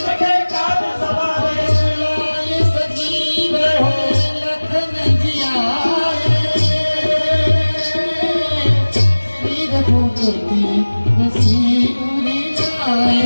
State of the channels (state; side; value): inverted; both; correlation -1.00